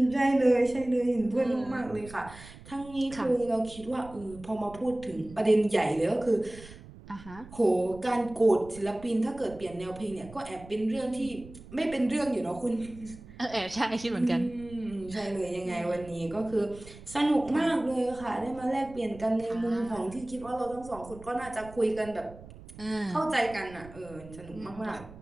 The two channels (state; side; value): noise; right; rumble, 18 dB below the sound